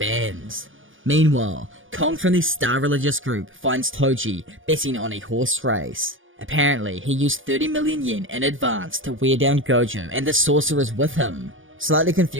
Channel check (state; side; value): late; left; 0.57 ms